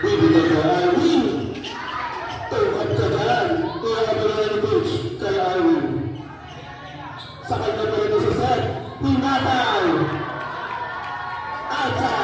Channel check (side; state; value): both; identical; correlation 1.00